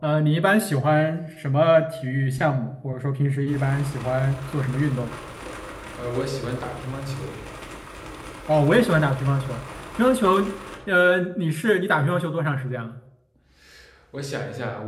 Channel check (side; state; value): both; identical; correlation 1.00